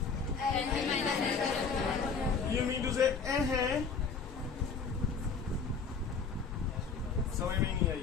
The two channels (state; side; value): quieter; right; 5.3 dB